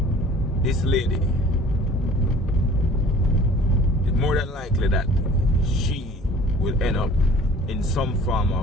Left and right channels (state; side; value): normal; both; correlation 0.49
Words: this lady, it's more than likely that she will end up in some form